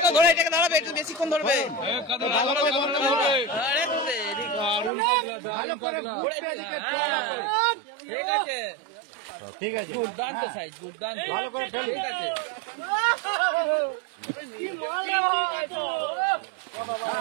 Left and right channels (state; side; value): drops out; left; at 4.9 s